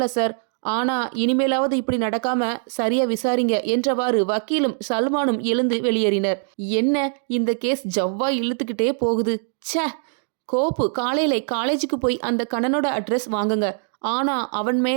சார், ஆனா இனிமேலாவது இப்படி நடக்காம சரியா விசாரிங்க என்றவாறு வக்கீலும் சல்மானும் எழுந்து வெளியேறினர். என்ன இந்த கேஸ் ஜவ்வா இழுத்துக்கிட்டே போகுது. ச்சே, கோப்பு காலையில காலேஜுக்கு போய் அந்த கண்ணனோட அட்ரஸ் வாங்குங்க. ஆனா அவன்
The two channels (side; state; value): left; silent; 58 dB below the other